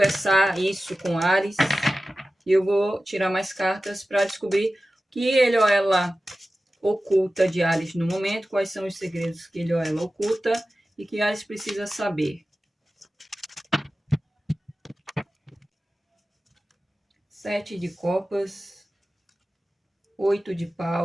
isso com Ares. E eu vou tirar mais cartas para descobrir o que ele ou ela oculta de Ares no momento, quais são os segredos que ele ou ela oculta e que Ares precisa saber. 7 de copas, 8 de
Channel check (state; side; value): normal; both; correlation 0.95